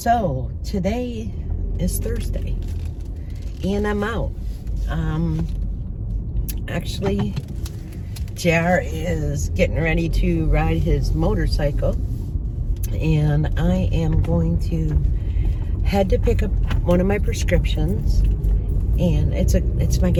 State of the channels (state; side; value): identical; both; correlation 1.00